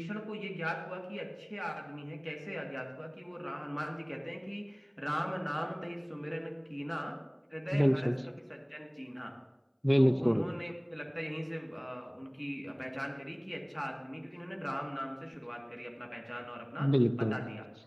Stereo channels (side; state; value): both; identical; correlation 1.00